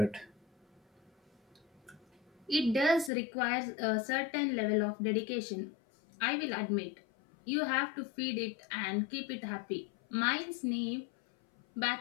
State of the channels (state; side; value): drops out; right; at 3.1 s